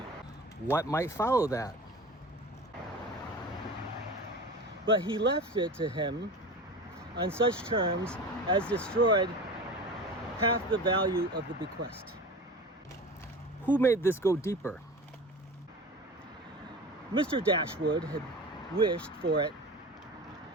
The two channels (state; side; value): normal; both; correlation 0.34